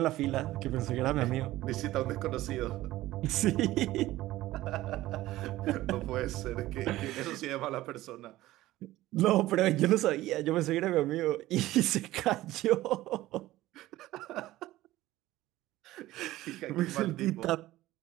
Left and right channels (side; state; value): left; quieter; 16.3 dB